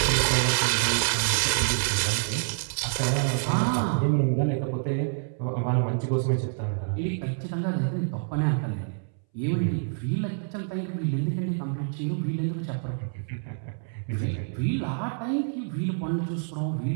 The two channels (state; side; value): silent; left; 60 dB below the other